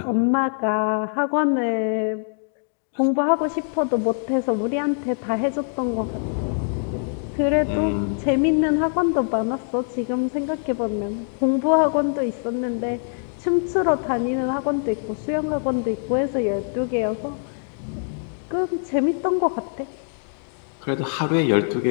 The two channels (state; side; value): silent; right; 63 dB below the other